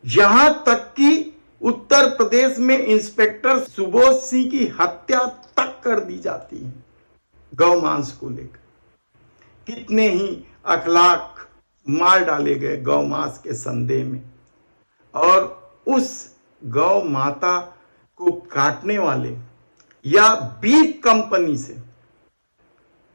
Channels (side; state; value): both; inverted; correlation -1.00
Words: यहां तक कि उत्तर प्रदेश में इंस्पेक्टर सुबोध सिंह की हत्या तक कर दी जाती है गौ मांस को लेकर। कितने ही अखलाक मार डाले गए गौ मांस के संदेह में। और उस गौ माता को काटने वाले या बीफ कंपनी से